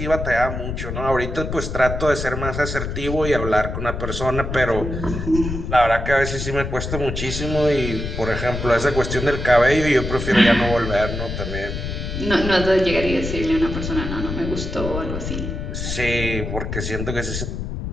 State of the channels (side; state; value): left; noise; rumble, 5 dB below the sound